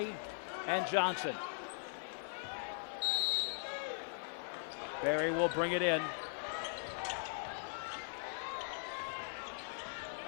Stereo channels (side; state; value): right; silent; digital silence